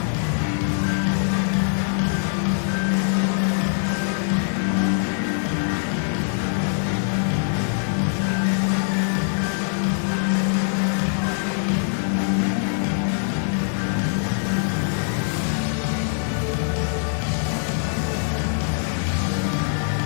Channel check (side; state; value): right; silent; digital silence